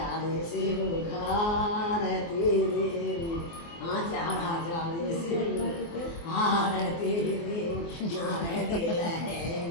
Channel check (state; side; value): late; right; 24 ms